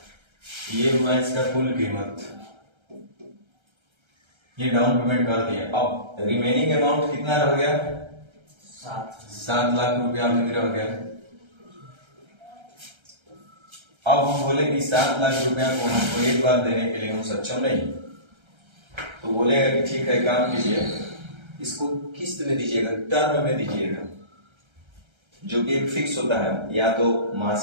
ये हुआ इसका कुल कीमत, ये डाउन पेमेंट कर दिया। अब रिमेनिंग अमाउंट कितना रह गया? 7 लाख रुपया अभी रह गया। अब हम बोले कि 7 लाख रुपया को हमको एक बार देने के लिए हम सक्षम नहीं, तो बोलेगा कि ठीक है काम कीजिए, इसको किस्त में दीजिएगा, टर्म में दीजिएगा, जो कि एक फिक्स होता है। या तो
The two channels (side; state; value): left; late; 1.3 ms